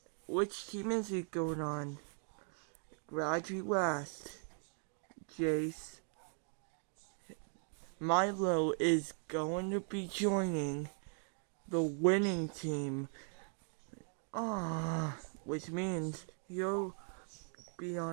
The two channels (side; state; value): left; silent; 52 dB below the other